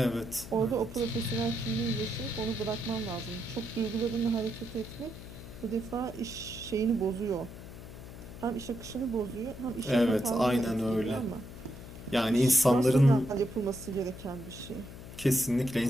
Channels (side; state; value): left; noise; hum, 13 dB below the sound